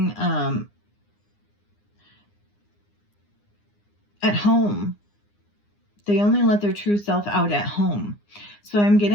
at home. They only let their true self out at home. So I'm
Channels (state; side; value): late; right; 9.8 ms